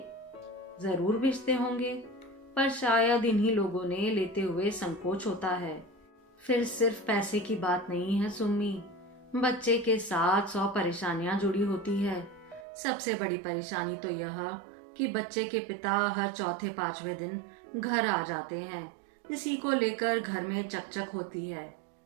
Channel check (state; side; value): drops out; left; at 12.7 s